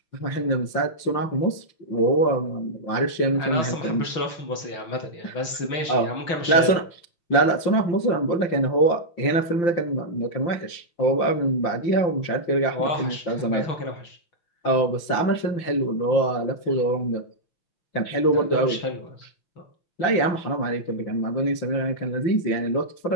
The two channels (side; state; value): right; late; 6.2 ms